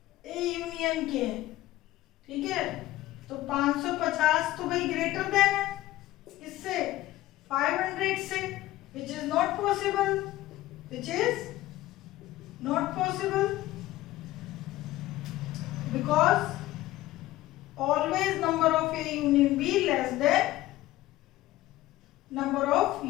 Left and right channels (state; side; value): quieter; right; 16.1 dB